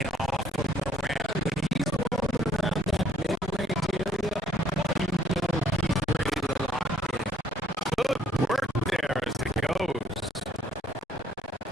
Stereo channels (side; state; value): both; normal; correlation 0.64